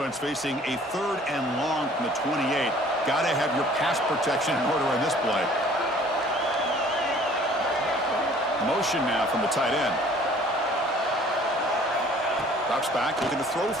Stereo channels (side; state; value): both; normal; correlation 0.53